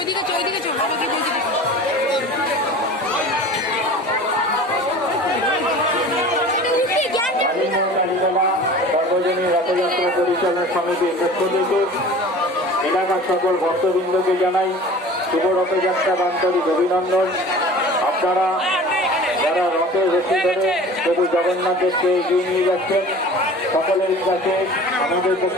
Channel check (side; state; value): both; normal; correlation 0.41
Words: সর্বজনীন রথযাত্রা পরিচালনা সমিতির পক্ষ থেকে এলাকার সকল ভক্তবৃন্দকে জানাই শুভ রথযাত্রা আন্তরিক অভিনন্দন। আপনারা যারা রথের রশি ধরে প্রভু জগন্নাথ দেবকে এগিয়ে নিয়ে যাচ্ছেন, সকলের কাছে আমাদের পক্ষ